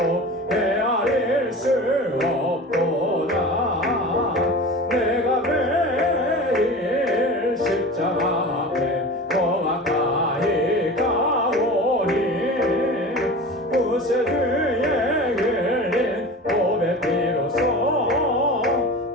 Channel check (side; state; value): both; normal; correlation 0.34